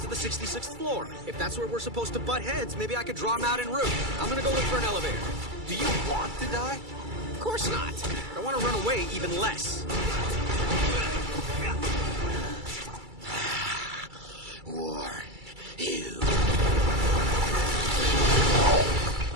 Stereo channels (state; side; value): late; left; 2.3 ms